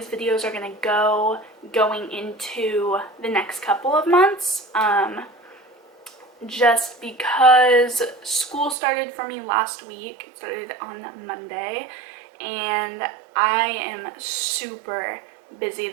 videos are going to go going into the next couple of months. Just because school started for me last week. It started on Monday, and I am super busy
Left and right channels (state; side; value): drops out; left; at 8.8 s